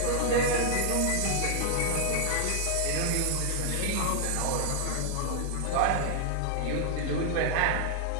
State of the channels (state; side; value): different; both; correlation 0.00